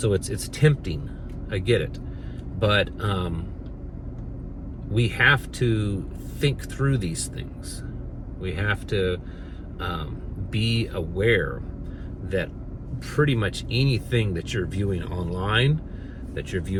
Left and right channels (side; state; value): both; identical; correlation 1.00